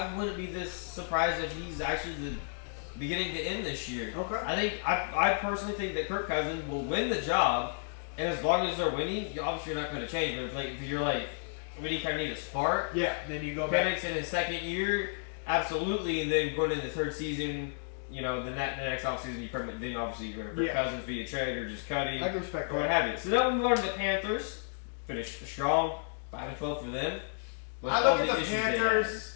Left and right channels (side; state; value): right; silent; digital silence